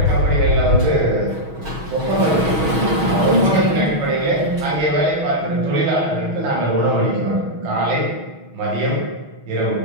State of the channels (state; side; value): late; left; 6.3 ms